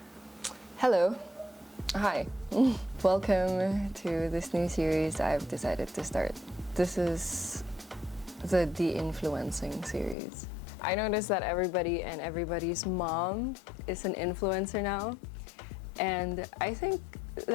Hello. Hi. Welcome to this new series I've decided to start. This is the Deinfluencing series. I noticed that everybody and everybody's mom is an influencer now. And I think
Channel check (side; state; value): right; drops out; at 10.2 s